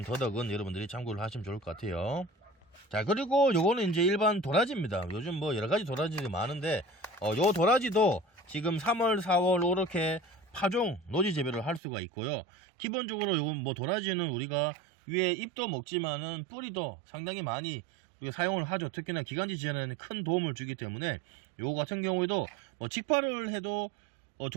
더덕은 여러분들이 참고를 하시면 좋을 것 같아요. 자, 그리고 요거는 이제 일반 도라지입니다. 요즘 뭐 여러가지 도라지들이 많은데 요 도라지도 지금 3월 4월 이렇게 파종 노지 재배를 할 수가 있고요. 기본적으로 요건 뭐 도라지는 우리가 위에 잎도 먹지만은 뿌리도 상당히 많이 우리가 사용을 하죠. 특히나 기관지 지원에는 큰 도움을 주기 때문에 요거 같은 경우에도 뭐 직파를 해도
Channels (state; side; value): drops out; left; at 11.8 s